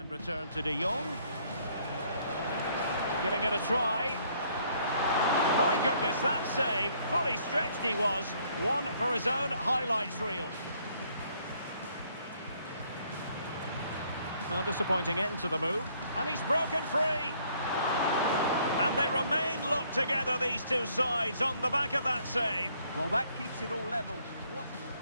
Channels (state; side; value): inverted; both; correlation -0.65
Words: return to De Jong. Giving it a try. My goodness, that save. Fully stretched he was. One for his own highlights reel. Well, disappointing end to the move. And he's broken free. And they remain locked together, these two sides, on the back of that save. Well, that keeps it all level.